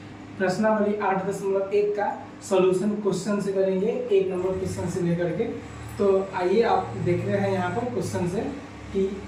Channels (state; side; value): identical; both; correlation 1.00